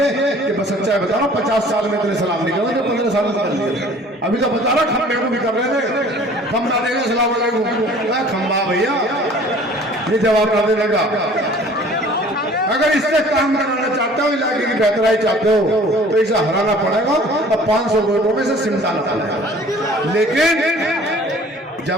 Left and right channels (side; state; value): both; normal; correlation 0.50